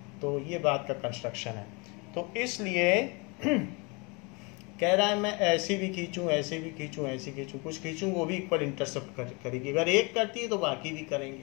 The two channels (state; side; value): quieter; right; 29.6 dB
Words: तो ये बात का कंस्ट्रक्शन है। तो इसलिए कह रहा है मैं ऐसे भी खींचूं, ऐसे भी खींचूं, ऐसे खींचूं, कुछ खींचूं, वो भी इक्वल इंटरसेप्ट करेगी। अगर एक करती है तो बाकी भी